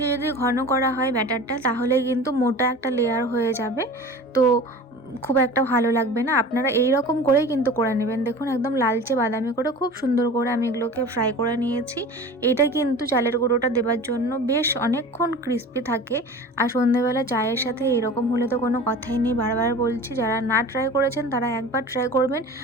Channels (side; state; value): both; normal; correlation 0.37